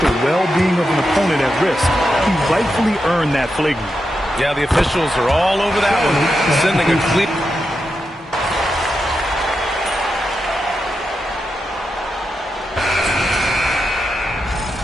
well-being of an opponent at risk. He rightfully earned that flagrant. Yeah, the officials are all over that one, sending a clear.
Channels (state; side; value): normal; both; correlation 0.87